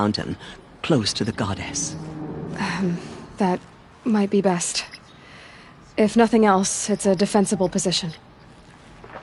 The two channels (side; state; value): both; identical; correlation 1.00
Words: close to the goddess. That might be best. If nothing else, it's a defensible position.